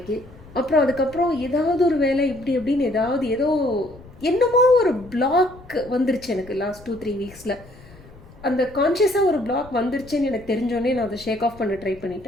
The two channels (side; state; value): left; noise; rumble, 21 dB below the sound